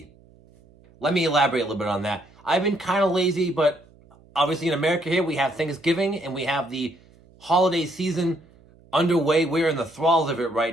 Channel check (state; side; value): noise; right; hum, 28 dB below the sound